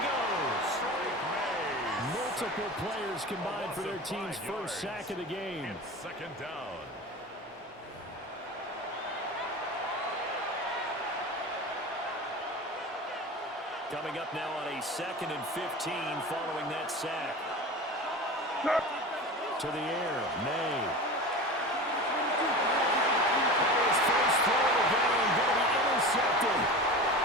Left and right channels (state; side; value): normal; both; correlation 0.31